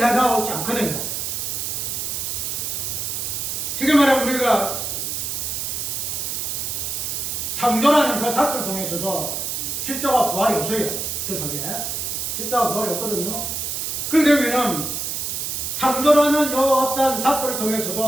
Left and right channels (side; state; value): right; noise; hiss, 3 dB below the sound